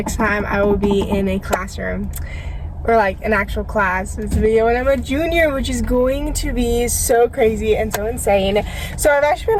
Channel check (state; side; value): identical; both; correlation 1.00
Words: time I will be in a classroom or like an actual class. It's a video when I'm a junior, which is going to be so crazy and so insane. So I've actually